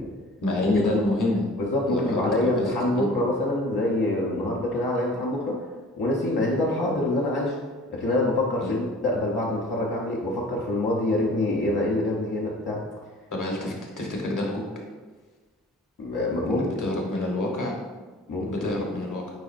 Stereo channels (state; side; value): normal; both; correlation 0.47